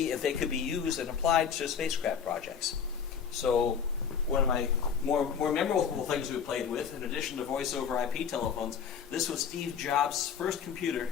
if they could be used and applied to spacecraft projects. So one of my more memorable things we played with, in addition to voice over IP telephones, this was Steve Jobs' first computer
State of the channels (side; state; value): right; quieter; 7.2 dB